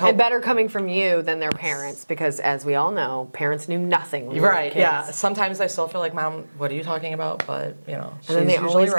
And better coming from you than their parents, because as we all know, parents knew nothing when we were Right, kids. yeah. Sometimes I still feel like, Mom, what are you talking about? But, you know, And then they usually always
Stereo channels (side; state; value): both; inverted; correlation -1.00